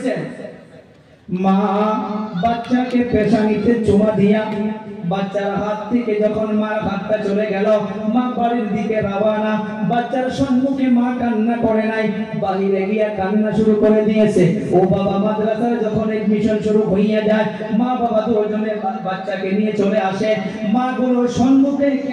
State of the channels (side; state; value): both; identical; correlation 1.00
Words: মা বাচ্চাকে পেশানিতে চুমা দিয়া বাচ্চার হাত থেকে যখন মার হাতটা চলে গেল, মা বাড়ির দিকে রওনা। বাচ্চার সম্মুখে মা কান্না করে নাই, বাইরে গিয়া কান্না শুরু করে দিয়েছে। ও বাবা মাদ্রাসায় যখন এডমিশন শুরু হইয়া যায়, মা বাবা দুজনে বাচ্চাকে নিয়ে চলে আসে। মা গুলো সম্মুখে